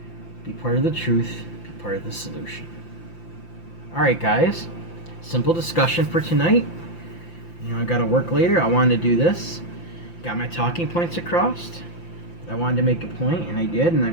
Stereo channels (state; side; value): late; right; 5.8 ms